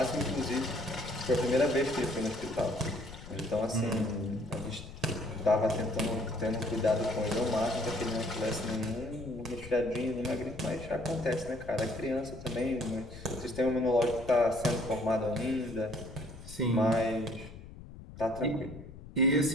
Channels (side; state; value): left; noise; rumble, 15 dB below the sound